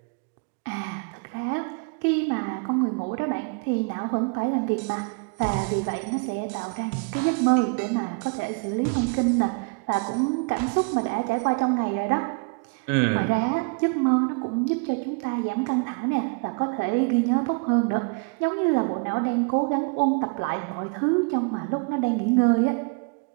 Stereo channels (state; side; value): quieter; left; 33.7 dB